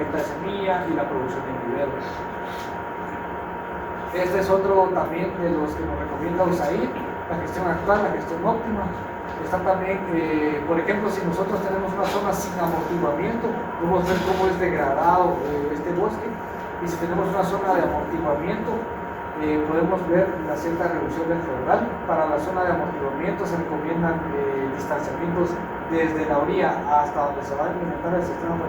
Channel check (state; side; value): identical; both; correlation 1.00